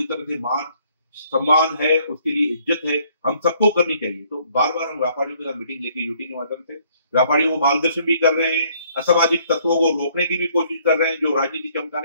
तरह से मान सम्मान है, उसके लिए इज्जत है, हम सबको करनी चाहिए। तो बार बार हम व्यापारियों के साथ मीटिंग लेके यूटी के माध्यम से व्यापारियों को मार्गदर्शन भी कर रहे हैं, असामाजिक तत्वों को रोकने की भी कोशिश कर रहे हैं जो राजनीति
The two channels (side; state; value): both; inverted; correlation -0.63